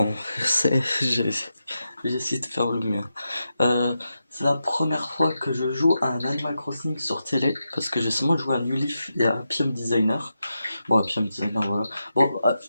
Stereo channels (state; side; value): inverted; both; correlation -0.88